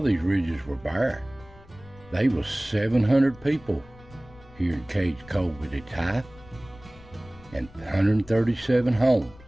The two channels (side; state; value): left; noise; rumble, 22 dB below the sound